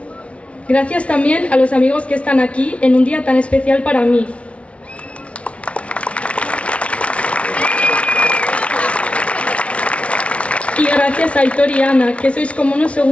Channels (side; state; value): right; late; 0.062 ms